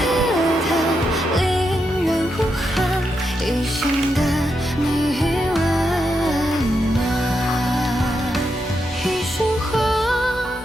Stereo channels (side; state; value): both; normal; correlation 0.84